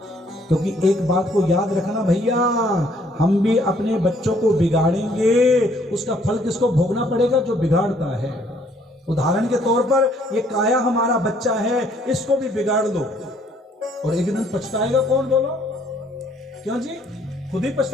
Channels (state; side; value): normal; both; correlation 0.64